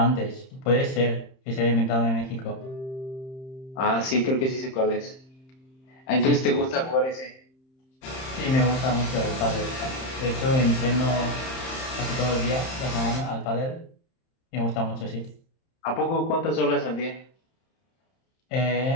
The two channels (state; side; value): late; right; 31 ms